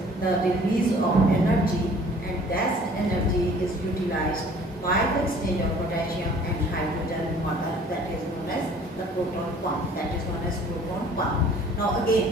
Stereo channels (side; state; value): both; normal; correlation 0.52